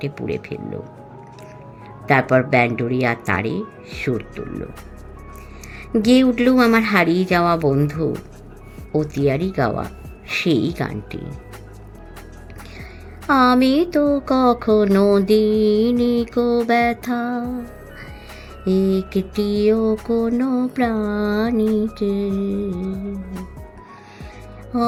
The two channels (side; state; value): both; identical; correlation 1.00